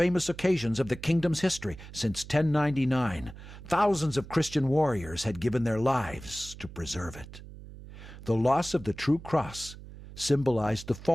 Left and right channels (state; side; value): noise; right; hum, 15 dB below the sound